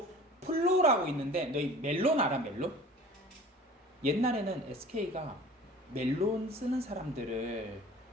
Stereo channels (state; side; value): normal; both; correlation 0.44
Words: 플로라고 있는데, 너희 멜론 알아? 멜론? 옛날에는 SK가 멜론 쓰는 사람들을